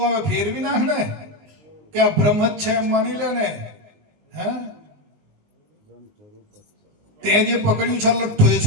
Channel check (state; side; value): late; left; 19 ms